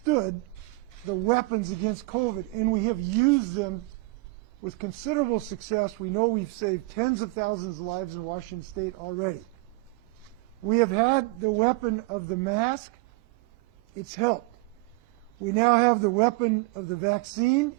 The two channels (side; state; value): left; quieter; 23.2 dB